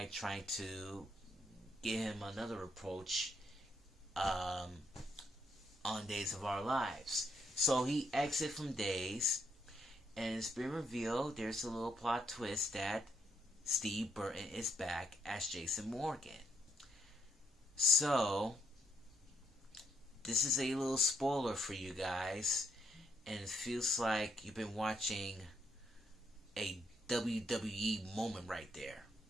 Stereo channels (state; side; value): normal; both; correlation 0.75